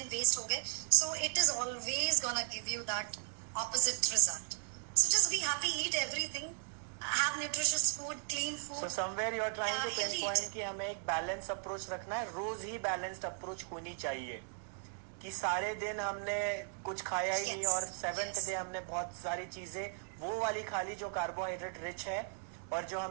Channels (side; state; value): left; silent; 53 dB below the other